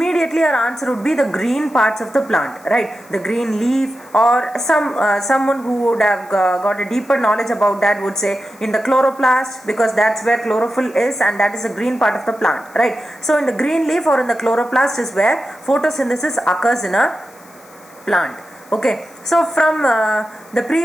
our answer would be the green parts of the plant, right? The green leaf, or someone who would have got a deeper knowledge about that would say in the chloroplast, because that's where chlorophyll is and that is the green part of the plant, right? So in the green leaf or in the chloroplast is where photosynthesis occurs in a plant. Okay, so from the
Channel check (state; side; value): noise; left; hiss, 26 dB below the sound